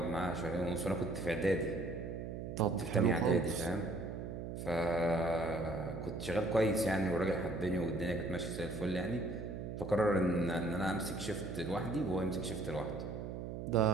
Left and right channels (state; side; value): noise; right; hum, 6 dB below the sound